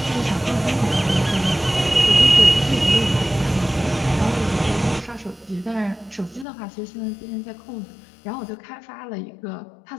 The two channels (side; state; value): right; drops out; at 6.5 s